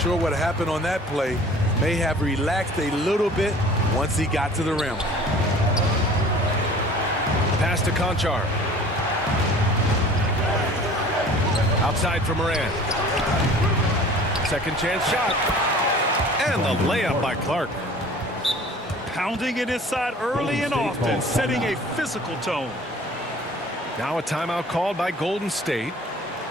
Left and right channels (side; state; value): both; normal; correlation 0.47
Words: what happened on that play. May have relaxed a little bit once he got to the rim. Pass to Conchar. Outside for Morant. Second chance shot. And the layup by Clark. Pounding it inside early and often, setting a physical tone. Now a timeout called by Golden State.